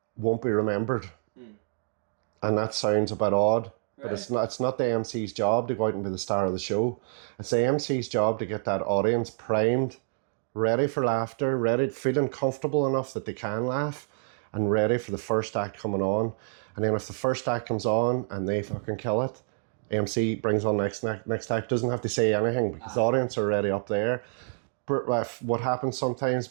won't be remembered. And that sounds a bit odd. Right. It's not the MC's job to go out and be the star of the show. It's the MC's job to get that audience primed, ready for laughter, feeling comfortable enough that they can laugh, and ready for the first act coming on. And then if the first act comes on and they fucking kill it, MC brings on next act, doesn't have to say anything because the audience are already up there. But what happens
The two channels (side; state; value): left; silent; digital silence